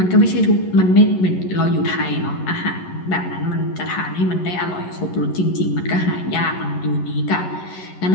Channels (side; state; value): right; late; 11 ms